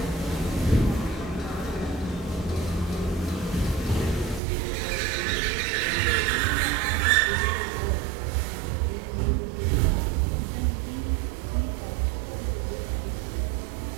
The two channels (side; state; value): left; drops out; at 4.4 s